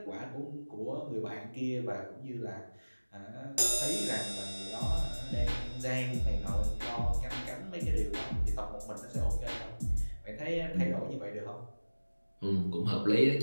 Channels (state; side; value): inverted; both; correlation -1.00